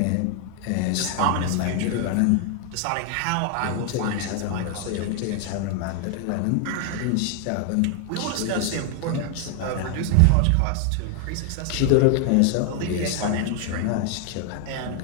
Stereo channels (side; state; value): both; different; correlation 0.00